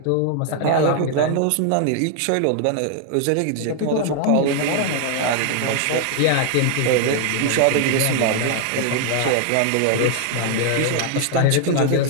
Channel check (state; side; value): different; both; correlation 0.00